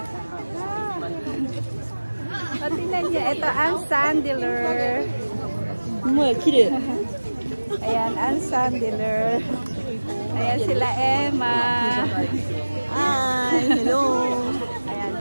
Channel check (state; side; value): inverted; both; correlation -1.00